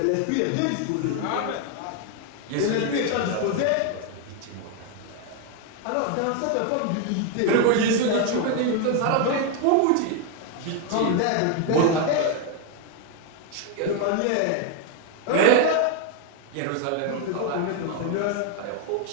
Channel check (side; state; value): both; different; correlation 0.01